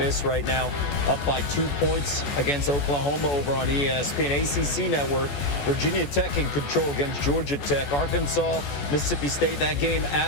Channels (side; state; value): right; late; 14 ms